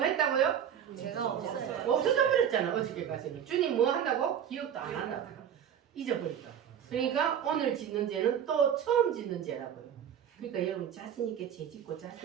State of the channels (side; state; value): left; quieter; 9.0 dB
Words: 했다고요? 제가 없어요. 없어져 버렸잖아. 어저께까지는. 주님 뭐 한다고? 기억도 안 한다고. 잊어버렸다. 그러니까 오늘 짓는 죄는 또 처음 짓는 죄라고요. 그러니까 여러분 자신 있게 죄 짓고